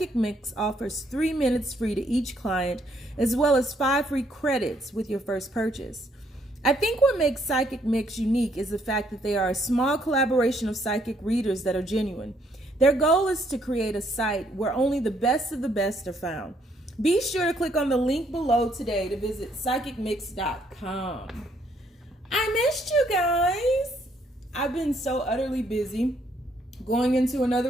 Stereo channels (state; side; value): normal; both; correlation 0.70